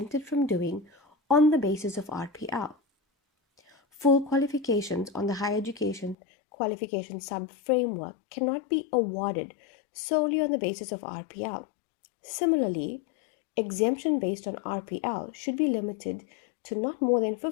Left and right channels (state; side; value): drops out; right; at 6.2 s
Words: from doing on the basis of RPL. Full qualifications on the higher education qualification sub-framework cannot be awarded solely on the basis of RPL. Similarly, exemption based on RPL should be limited to not more than